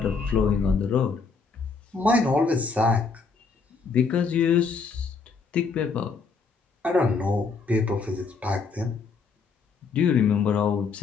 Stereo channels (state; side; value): quieter; right; 4.8 dB